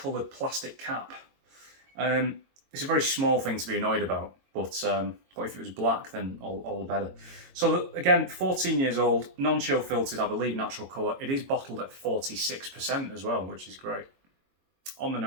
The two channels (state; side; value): late; left; 22 ms